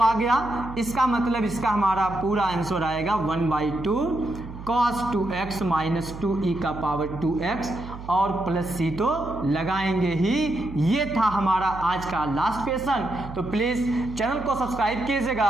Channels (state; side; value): noise; right; hum, 12 dB below the sound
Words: गया, इसका मतलब इसका हमारा पूरा आंसर आएगा 1/2 cos 2x माइनस 2 e का पावर 2x, और प्लस c तो लगाएंगे ही। ये था हमारा आज का लास्ट क्वेश्चन। तो प्लीज़ चैनल को सब्सक्राइब कीजिएगा